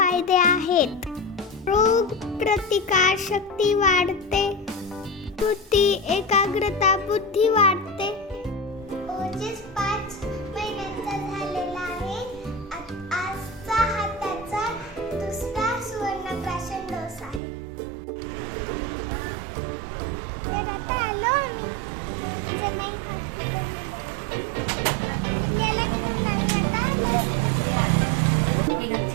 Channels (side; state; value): left; drops out; at 17.4 s